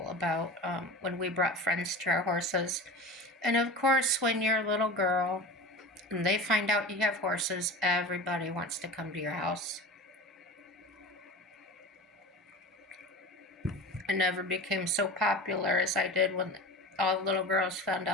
about when we brought friends to our horses. And of course, when you're a little girl and they find out you have horses, everybody wants to come to your house. I never became so popular as I did when all the little girls found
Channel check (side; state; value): both; normal; correlation 0.32